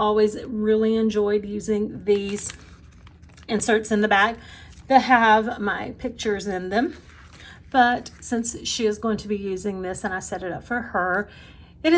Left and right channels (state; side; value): identical; both; correlation 1.00